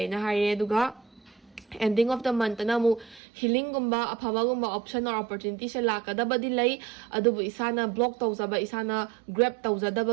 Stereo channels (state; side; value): drops out; left; at 3.2 s